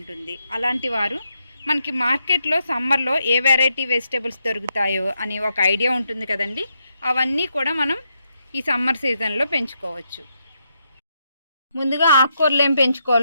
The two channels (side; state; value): both; inverted; correlation -0.81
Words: అలాంటి వారు మనకి మార్కెట్లో సమ్మర్లో ఏ వెరైటీ వెజిటేబుల్స్ దొరుకుతాయో అని ఒక ఐడియా ఉంటుంది కదండి. అవన్నీ కూడా మనం ఈ సమ్మర్ సీజన్లో పెంచుకోవచ్చు. ముందుగా ఆకుకూరలు ఏం